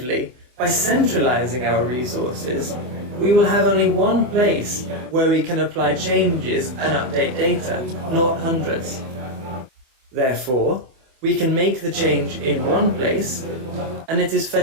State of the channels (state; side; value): late; left; 24 ms